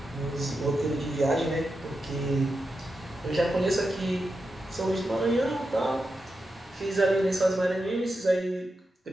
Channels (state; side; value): normal; both; correlation 0.88